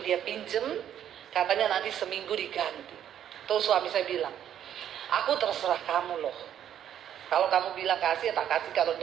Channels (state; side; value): quieter; left; 10.2 dB